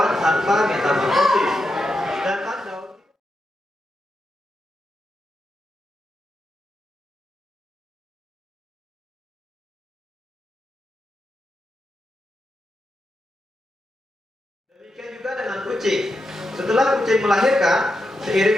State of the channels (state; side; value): normal; both; correlation 0.86